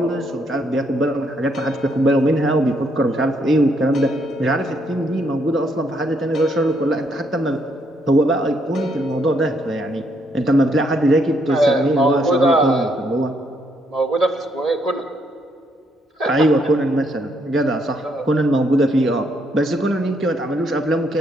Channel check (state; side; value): normal; both; correlation 0.73